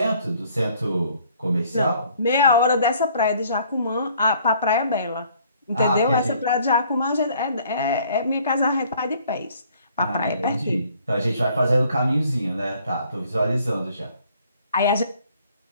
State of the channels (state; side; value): inverted; both; correlation -0.60